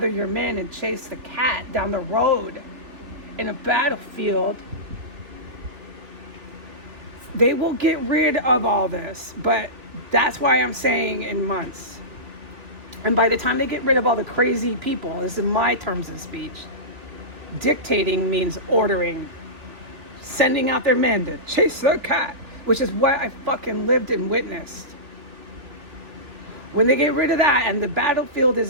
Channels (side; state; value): left; late; 3.3 ms